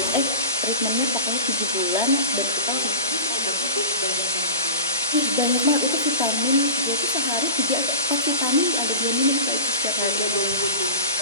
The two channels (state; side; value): inverted; both; correlation -0.32